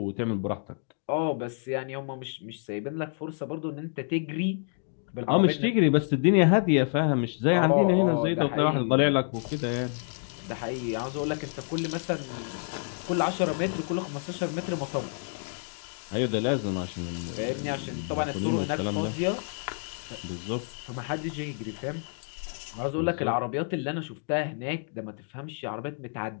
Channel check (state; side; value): silent; right; 59 dB below the other